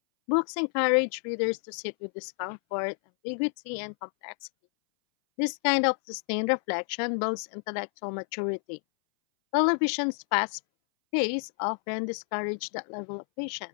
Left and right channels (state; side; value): silent; right; 58 dB below the other